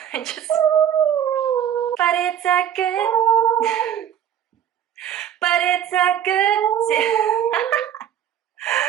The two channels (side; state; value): left; quieter; 9.9 dB